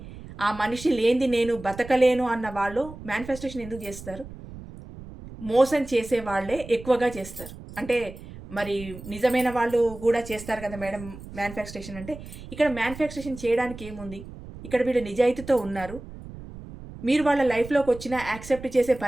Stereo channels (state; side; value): noise; right; rumble, 14 dB below the sound